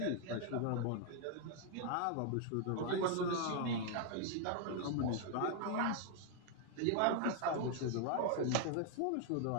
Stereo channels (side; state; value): both; different; correlation 0.00